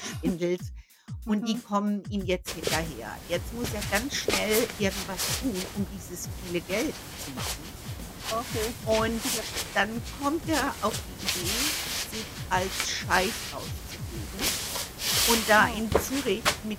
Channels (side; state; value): both; identical; correlation 1.00